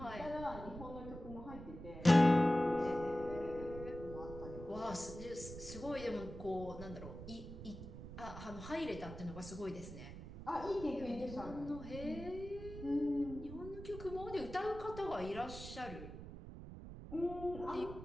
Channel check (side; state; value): right; noise; rumble, 11 dB below the sound